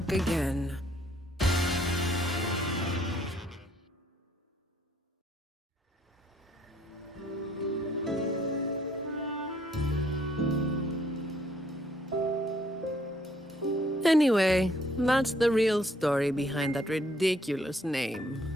again. Anyway, that's the real story behind that ridiculous name.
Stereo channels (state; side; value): normal; both; correlation 0.66